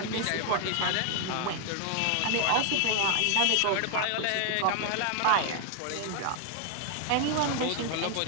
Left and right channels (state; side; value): different; both; correlation 0.00